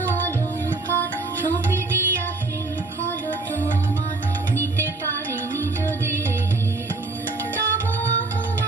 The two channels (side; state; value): left; quieter; 3.4 dB